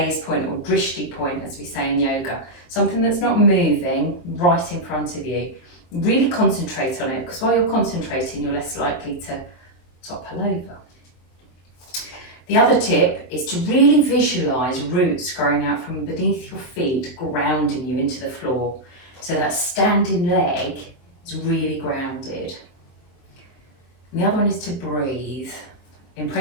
point or drishti point, as we say in yoga. Something that's not moving right in front of you. Really concentrate on it, because while you're concentrating, you're less likely to topple over. The other tip is to really visualise roots growing out from beneath your feet, grounding you into the floor. So that standing leg is really grounded. And the other one is to breathe. In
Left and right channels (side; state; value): right; late; 23 ms